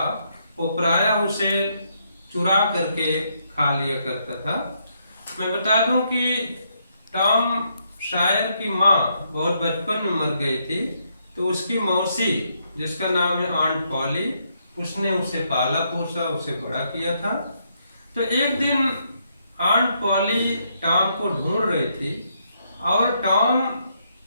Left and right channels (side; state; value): both; inverted; correlation -0.76